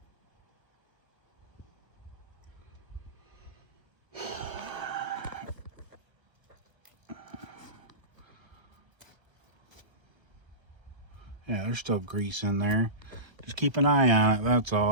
Yeah, there's still grease in there. Just keep an eye on it, that's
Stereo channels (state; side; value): late; left; 1.6 ms